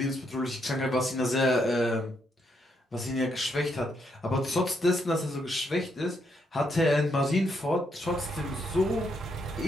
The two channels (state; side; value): normal; both; correlation 0.77